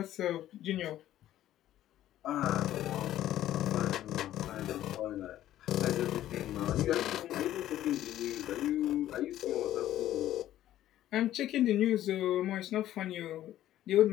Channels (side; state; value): right; quieter; 13.0 dB